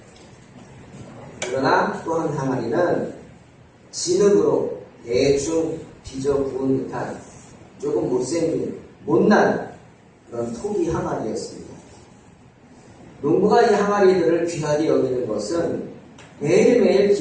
그러나 또 한 항아리는 진흙으로 대충 빚어 부은 듯한 조금 못생긴 못난 그런 토기 항아리였습니다. 농부가 이 항아리들을 귀하게 여기는 것은 매일매일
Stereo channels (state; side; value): identical; both; correlation 1.00